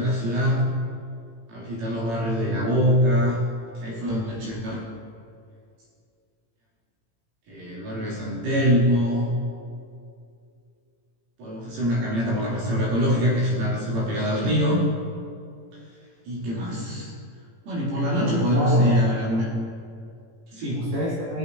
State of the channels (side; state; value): left; late; 18 ms